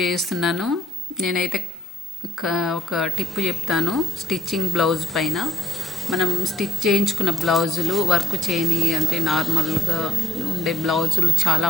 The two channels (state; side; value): normal; both; correlation 0.67